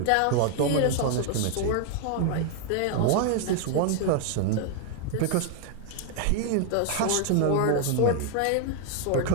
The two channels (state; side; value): different; both; correlation 0.00